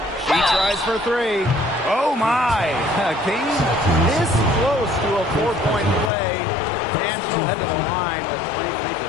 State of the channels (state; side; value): drops out; right; at 6.1 s